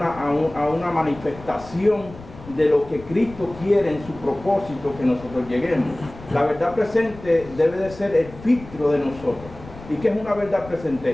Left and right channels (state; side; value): noise; left; rumble, 17 dB below the sound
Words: manifestación de lo que Cristo quiere en su propósito que nosotros lleguemos. La verdad presente debe de ser el filtro de nosotros. ¿Y qué es una verdad